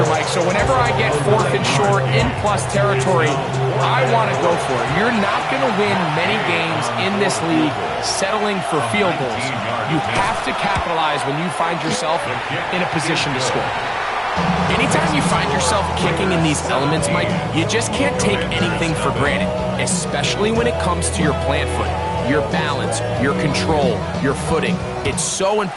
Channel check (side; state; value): both; identical; correlation 1.00